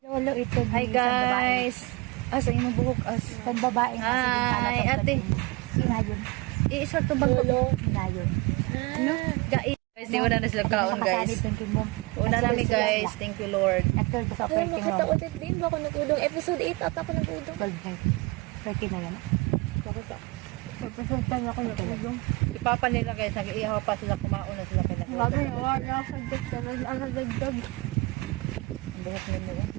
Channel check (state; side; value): quieter; left; 24.2 dB